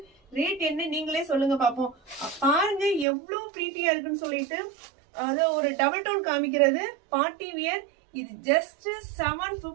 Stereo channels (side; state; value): left; drops out; at 3.1 s